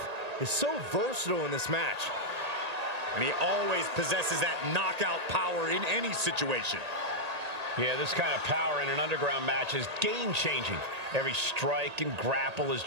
is so versatile in this match. And he always possesses that knockout power in any situation. Yeah, this kind of power in an underground match is game-changing. Every strike and grapple is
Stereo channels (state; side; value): late; left; 1.8 ms